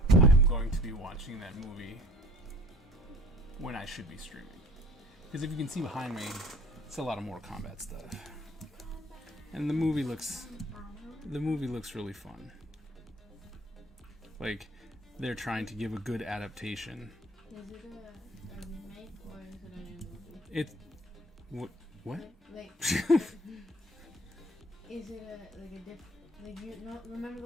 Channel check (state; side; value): normal; both; correlation 0.51